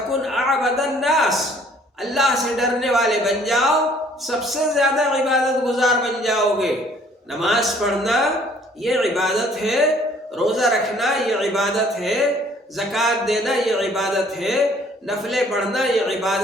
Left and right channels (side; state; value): both; normal; correlation 0.58